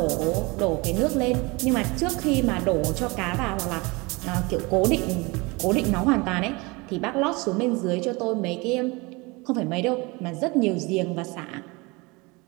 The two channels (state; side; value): quieter; left; 25.6 dB